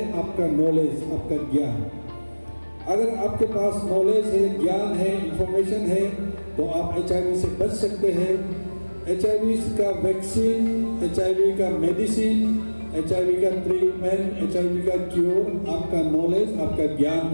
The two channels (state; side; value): inverted; both; correlation -1.00